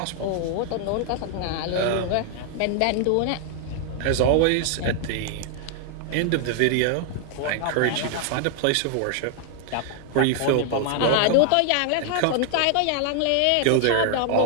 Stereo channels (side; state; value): both; different; correlation 0.00